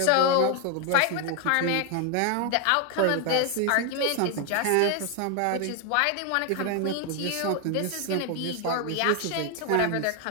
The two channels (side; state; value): both; different; correlation 0.01